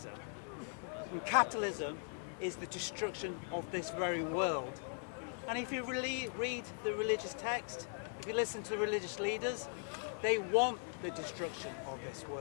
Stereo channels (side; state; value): right; silent; 51 dB below the other